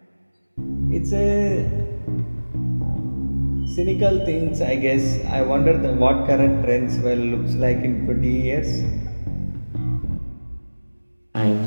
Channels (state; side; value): inverted; both; correlation -1.00